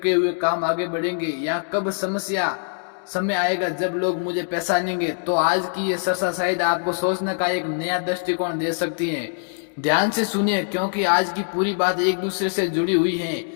हुए काम आगे बढ़ेंगे, या कब समय आएगा जब लोग मुझे पहचानेंगे, तो आज की ये चर्चा शायद आपको सोचने का एक नया दृष्टिकोण दे सकती है। ध्यान से सुनिए, क्योंकि आज की पूरी बात एक दूसरे से जुड़ी हुई है।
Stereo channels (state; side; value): silent; right; digital silence